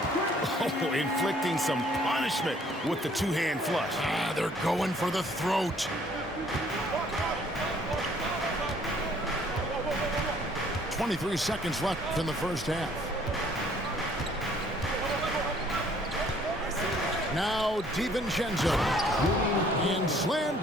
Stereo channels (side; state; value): both; normal; correlation 0.60